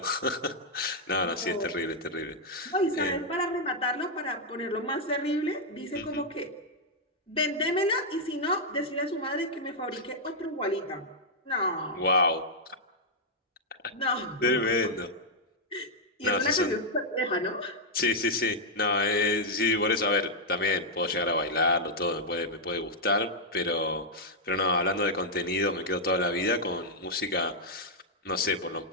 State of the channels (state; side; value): normal; both; correlation -0.04